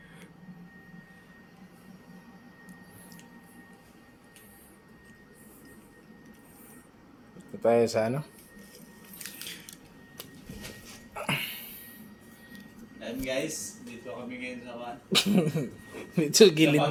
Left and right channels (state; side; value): identical; both; correlation 1.00